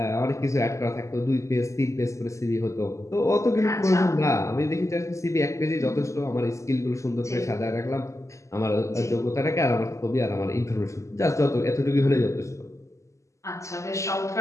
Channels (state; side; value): late; right; 0.15 ms